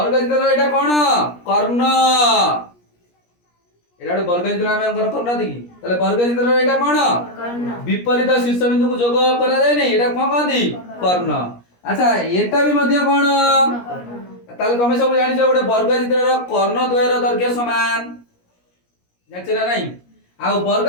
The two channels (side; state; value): right; late; 17 ms